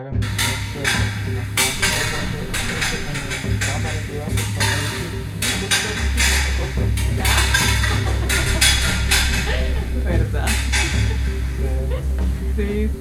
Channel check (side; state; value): both; identical; correlation 1.00